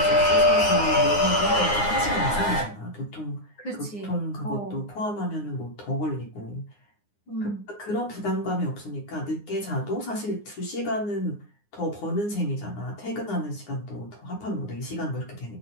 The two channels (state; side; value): late; right; 9.7 ms